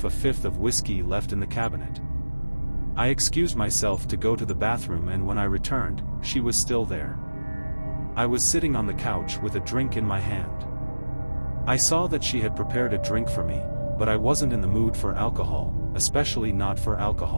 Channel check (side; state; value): both; inverted; correlation -1.00